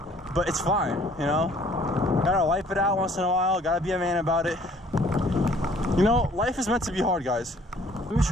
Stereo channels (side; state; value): both; normal; correlation 0.58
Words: but it's fine, you know? Gotta wipe it out once in a while, gotta be a man about it. You know, life is meant to be hard, guys. Let me